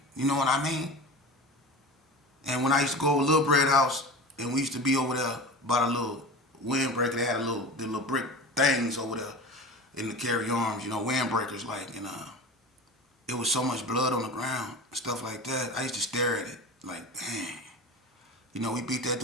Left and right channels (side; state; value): both; normal; correlation 0.32